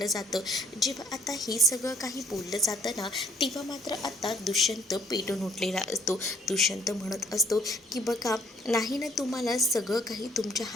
जातं. जेव्हा आता हे सगळं काही बोललं जातं ना तेव्हा मात्र आता दुष्यंत पेटून उठलेला असतो. दुष्यंत म्हणत असतो की बघा, नाही ना तुम्हाला सगळं काही तुमच्या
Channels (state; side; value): normal; both; correlation 0.61